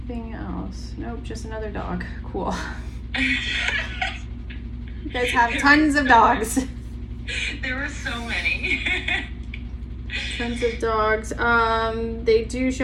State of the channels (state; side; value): identical; both; correlation 1.00